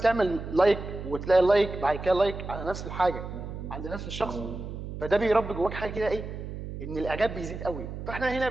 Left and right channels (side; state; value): right; noise; hum, 8 dB below the sound